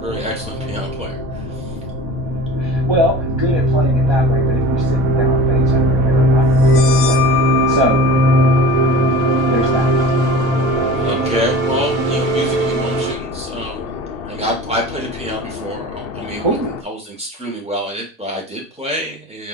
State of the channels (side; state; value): both; normal; correlation 0.38